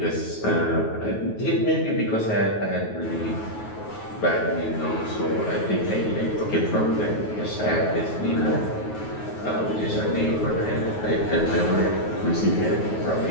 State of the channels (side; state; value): right; late; 9.4 ms